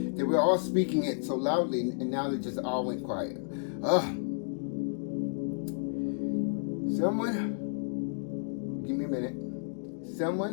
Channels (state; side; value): silent; right; digital silence